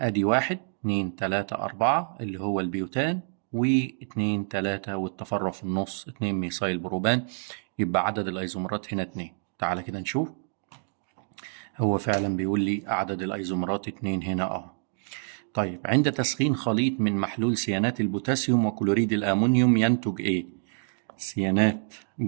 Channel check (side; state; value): left; silent; digital silence